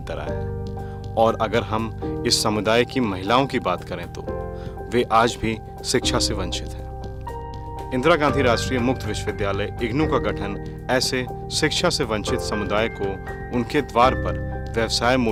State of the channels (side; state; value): both; identical; correlation 1.00